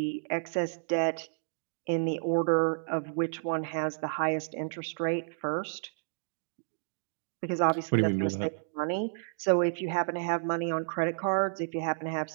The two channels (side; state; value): left; silent; digital silence